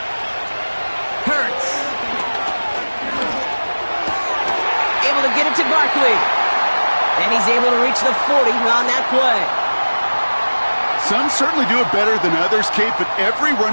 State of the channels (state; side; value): inverted; both; correlation -1.00